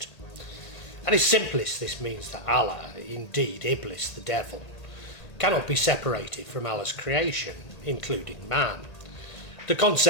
At its simplest, this means that Allah, indeed Iblis, the devil, cannot be separated from Allah's creation, including man. The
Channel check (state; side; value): late; right; 1.5 ms